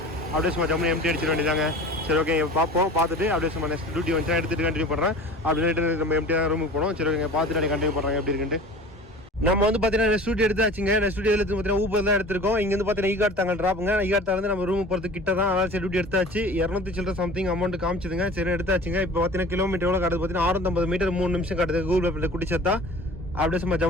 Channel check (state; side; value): normal; both; correlation 0.41